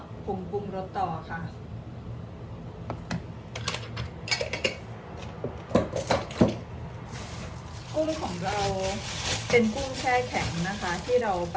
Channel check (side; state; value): both; identical; correlation 1.00